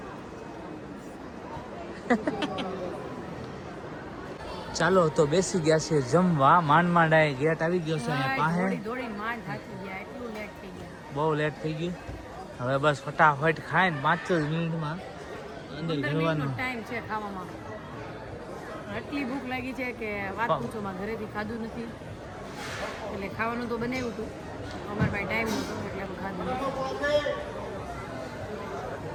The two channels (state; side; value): identical; both; correlation 1.00